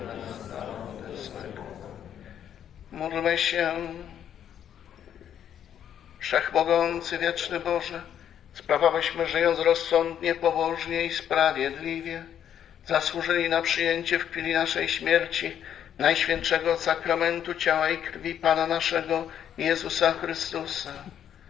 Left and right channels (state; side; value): quieter; right; 9.6 dB